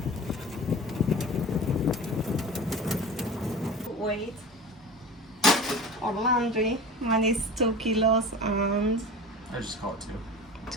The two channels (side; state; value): both; normal; correlation 0.35